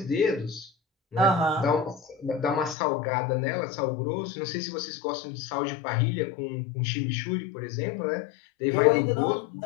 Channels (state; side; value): drops out; right; at 2.8 s